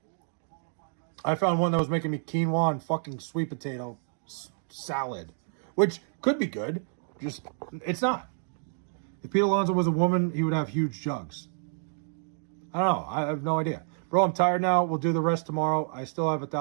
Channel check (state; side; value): silent; left; digital silence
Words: I found one that was making me quinoa and fucking sweet potato salad, which could be good. Just, it's not. If Pete Alonso was a woman, he would have huge jugs. I don't know. I have no idea. Bro, I'm tired now. We'll do the rest tomorrow. I still have